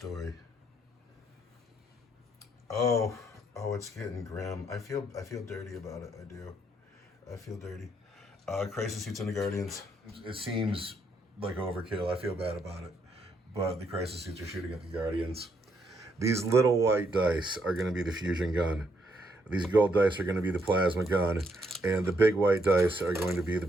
Oh, it's getting grim. I feel dirty about it. I do. I feel dirty. Crisis suits into Guardians. It seems like overkill. I feel bad about it. But the crisis suits are shooting at the Guardians. These little white dice are going to be the fusion gun. These gold dice are going to be the plasma gun. And the big white dice are going to be the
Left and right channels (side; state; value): both; normal; correlation 0.74